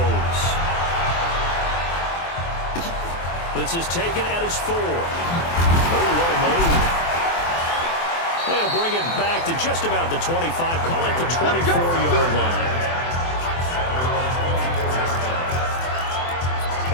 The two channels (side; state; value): right; late; 24 ms